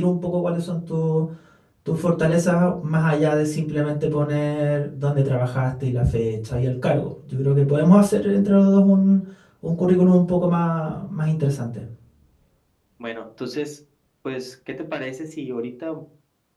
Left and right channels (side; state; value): both; identical; correlation 1.00